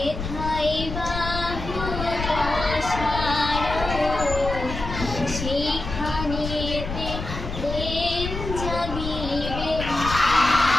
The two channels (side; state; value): left; noise; rumble, 6 dB below the sound